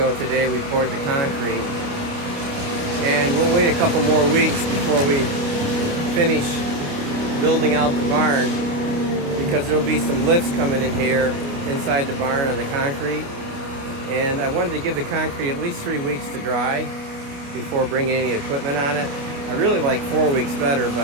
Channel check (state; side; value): late; left; 29 ms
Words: today we poured the concrete, and we'll wait a couple more weeks before we finish building out the barn, because there'll be some lifts coming in here inside the barn on the concrete, and I wanted to give the concrete at least 3 weeks to dry before bringing any equipment on it. I really like 4 weeks better,